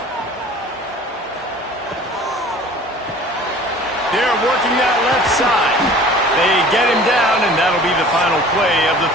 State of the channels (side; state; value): both; normal; correlation 0.46